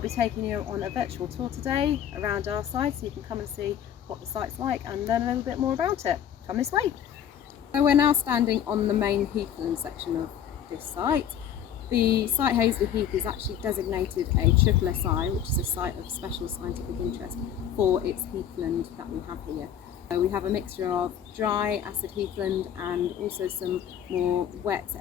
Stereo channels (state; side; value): quieter; right; 9.3 dB